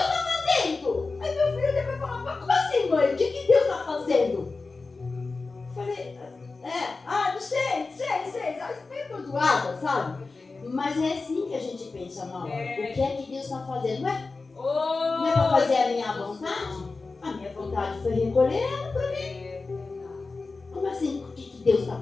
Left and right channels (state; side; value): quieter; right; 3.9 dB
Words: está fazendo? Aí meu filho depois falou, mas como assim, mãe? O que Deus está fazendo? Eu falei, não sei, meio perdoada, sabe? Mas é assim que a gente pensa na hora. O que é que Deus está fazendo? Não é para fazer a minha vontade? A minha vontade foi recolher ela para mim. Como assim? O que Deus está